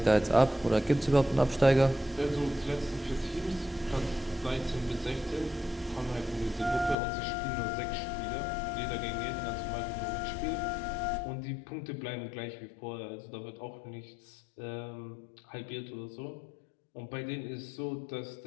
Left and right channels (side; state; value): right; drops out; at 7.0 s